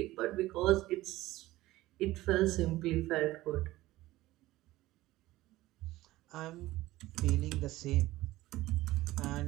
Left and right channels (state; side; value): quieter; left; 17.3 dB